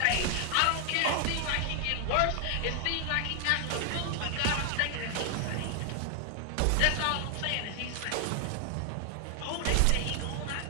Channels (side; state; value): both; different; correlation 0.00